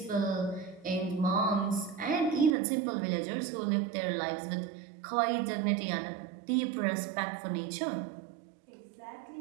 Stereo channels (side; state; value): left; drops out; at 2.5 s